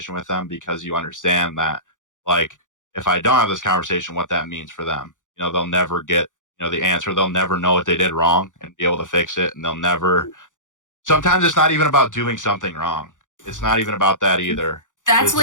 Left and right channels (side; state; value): right; late; 0.87 ms